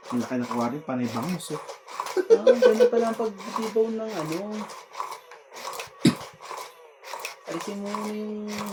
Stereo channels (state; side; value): identical; both; correlation 1.00